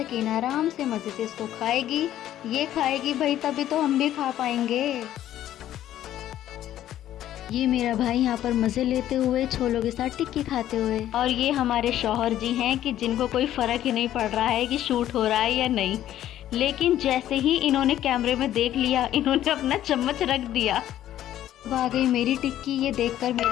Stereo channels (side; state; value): right; quieter; 12.3 dB